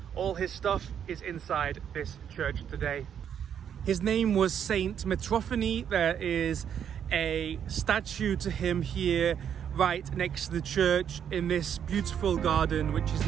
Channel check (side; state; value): left; quieter; 8.6 dB